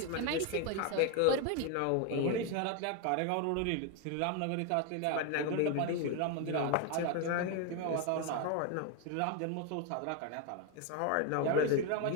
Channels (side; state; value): both; different; correlation 0.01